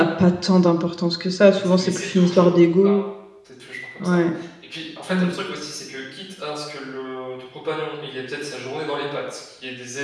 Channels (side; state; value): both; identical; correlation 1.00